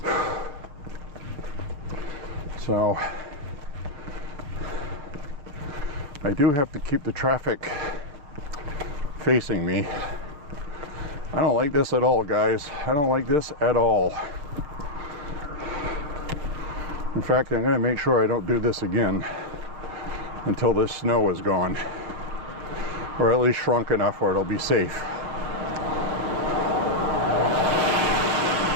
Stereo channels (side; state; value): left; late; 6.7 ms